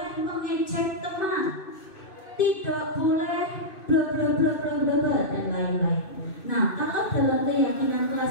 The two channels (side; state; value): right; late; 2.6 ms